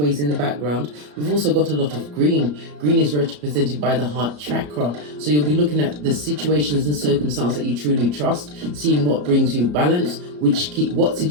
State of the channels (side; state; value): left; late; 34 ms